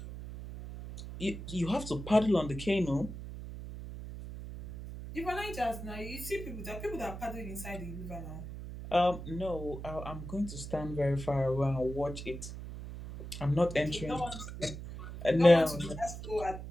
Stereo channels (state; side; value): noise; right; hum, 10 dB below the sound